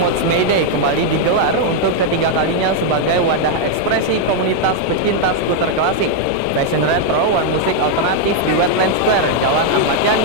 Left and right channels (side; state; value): both; different; correlation 0.00